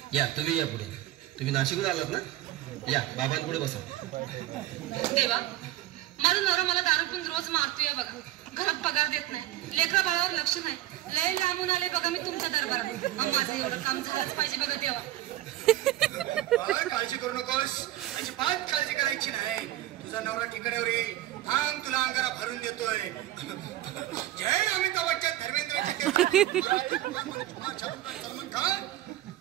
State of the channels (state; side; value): quieter; left; 14.5 dB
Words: या, तुम्ही या पुढे. तुम्ही नाशिकहून आलात ना? या बाबांपुढे बसा. देवा, माझा नवरा मला दारू पिऊन रोज मारतोय बघा. घरात पगार देत नाही, लेकरा बाळावर लक्ष नाही. लय लांबून आले बघा मी तुमच्या दरबारात. माझं एवढं काम झालंच पाहिजे बघा देवा. काळजी करू नकोस, अजिबात काळजी करायची नाही. तुझा नवरा ठिकाण्यावर येईल. थांब, तुला अंगारा भरून देतोय. जय अमिताभ बच्चन, धर्मेंद्र, सलमान खान,